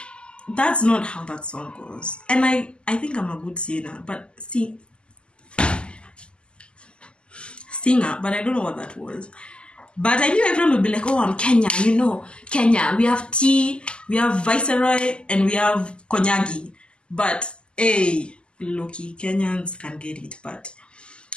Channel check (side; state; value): right; late; 0.051 ms